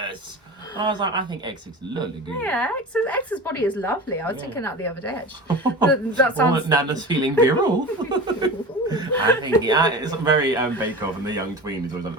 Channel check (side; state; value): both; normal; correlation 0.31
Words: I was like, I think X looks lovely good. Yeah, X's body is lovely. I was thinking that the other day, actually. That sounds... Nana's feeling virile. I think, it's very Bake Off, and the young tween is always